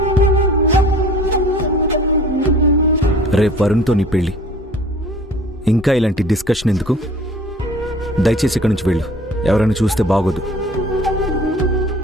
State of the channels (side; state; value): both; normal; correlation 0.48